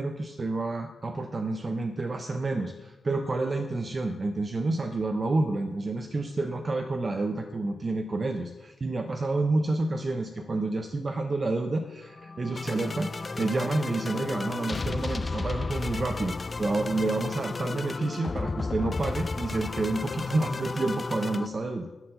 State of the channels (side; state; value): both; normal; correlation 0.91